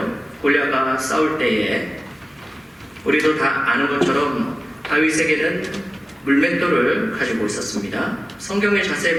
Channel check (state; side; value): normal; both; correlation 0.97